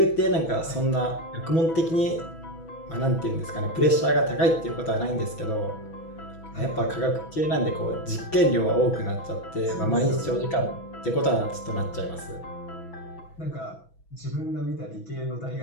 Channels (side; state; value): right; late; 6.1 ms